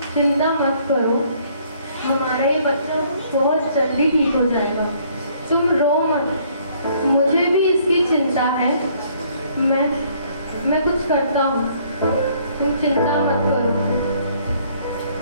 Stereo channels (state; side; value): inverted; both; correlation -0.63